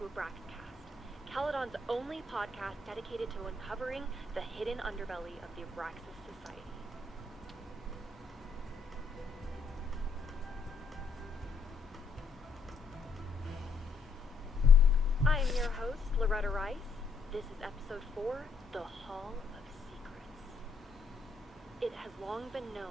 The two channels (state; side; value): quieter; right; 4.3 dB